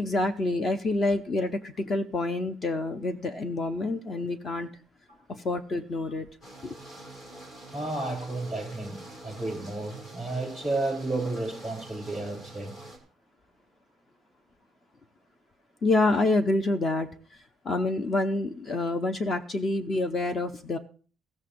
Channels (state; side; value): normal; both; correlation 0.73